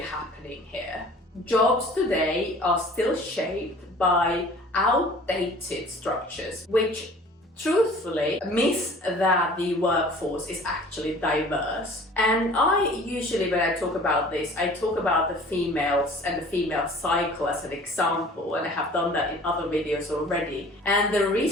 here? Jobs today are still shaped by outdated structures, which truthfully miss that the workforce is actually diverse. And I usually, when I talk about this, I talk about the females and the female cycle as an example, and I have done that in other videos already. And the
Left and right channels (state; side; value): normal; both; correlation 0.48